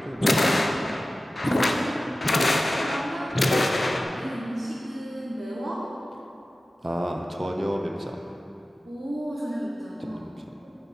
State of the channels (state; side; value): normal; both; correlation 0.95